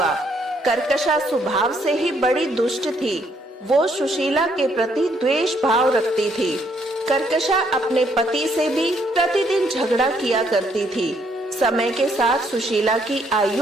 कर्कशा स्वभाव से ही बड़ी दुष्ट थी। वो सुशीला के प्रति द्वेष भाव रखती थी। कर्कशा अपने पति से भी प्रतिदिन झगड़ा किया करती थी। समय के साथ सुशीला की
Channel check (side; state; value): both; normal; correlation 0.70